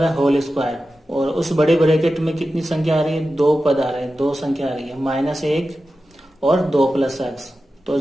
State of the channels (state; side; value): normal; both; correlation 0.93